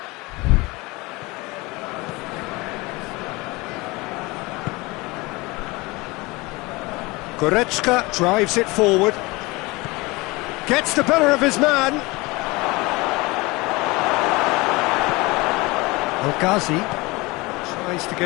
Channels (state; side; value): quieter; right; 23.4 dB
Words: Goretzka drives it forward. Gets the better of his man. El-Ghazi tries to